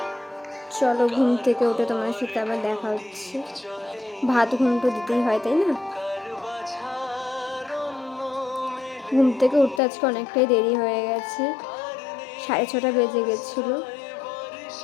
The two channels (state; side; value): drops out; right; at 9.8 s